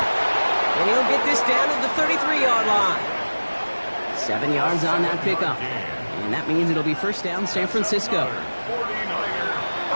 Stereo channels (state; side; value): inverted; both; correlation -1.00